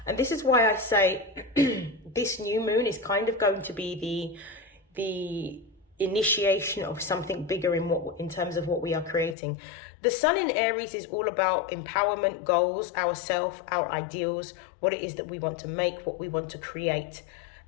and this is why I say this new moon is kind of going to be the initiation of something bigger in terms of what we are creating. The Sun in Aries is all about empowerment, goals, ourself, our ideals, what it is that we want to make, what we want to create.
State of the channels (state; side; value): drops out; right; at 9.3 s